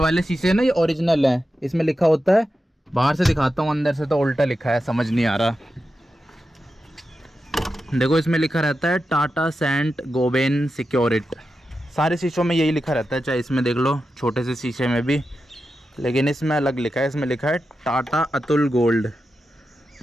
शीशे है ना, ये ओरिजिनल है, इसमें लिखा होता है, बाहर से दिखाता हूँ, अंदर से तो उल्टा लिखा है, समझ नहीं आ रहा। देखो इसमें लिखा रहता है टाटा सेंट गोबेन सिक्योरिट, सारे शीशों में यही लिखा रहता है, चाहे इसमें देख लो छोटे से शीशे में भी, लेकिन इसमें अलग लिखा है, इसमें लिखा है टाटा अतुल गोल्ड,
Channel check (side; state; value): both; normal; correlation 0.90